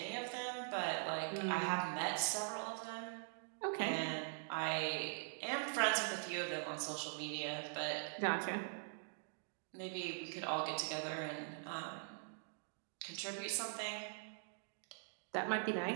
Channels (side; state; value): left; silent; digital silence